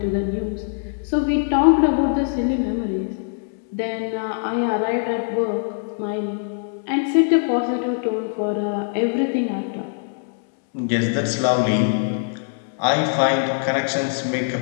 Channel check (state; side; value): silent; right; digital silence